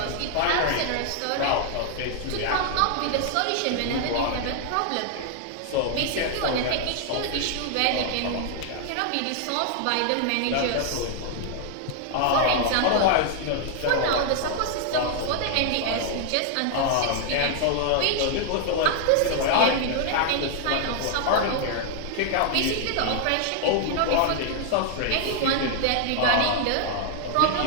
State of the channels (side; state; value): both; different; correlation 0.00